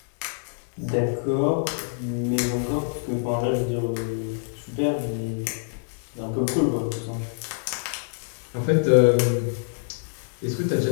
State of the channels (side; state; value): right; silent; digital silence